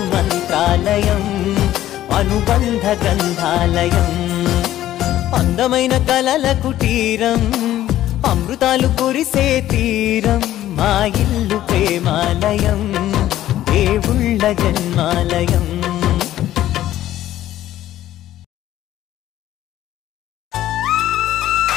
మంత్రాలయం అనుబంధ గంధాలయం అందమైన కలల కుటీరం అమృతాలు కురిసే తీరం మా ఇల్లు ప్రేమాలయం దేవుళ్ళ జన్మాలయం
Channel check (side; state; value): right; quieter; 13.3 dB